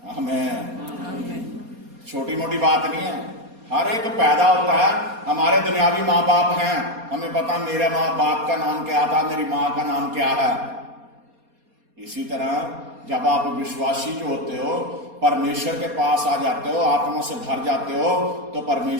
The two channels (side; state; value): left; late; 4.2 ms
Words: आमीन। छोटी मोटी बात नहीं है, हर एक पैदा होता है, हमारे दुनियावी माँ बाप हैं, हमें पता मेरे माँ बाप का नाम क्या था, मेरी माँ का नाम क्या है। इसी तरह जब आप विश्वासी जो होते हो, परमेश्वर के पास आ जाते हो, आत्मा से भर जाते हो, तो